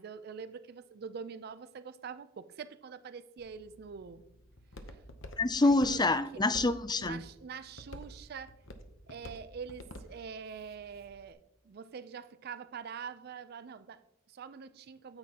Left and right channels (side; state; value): both; normal; correlation 0.47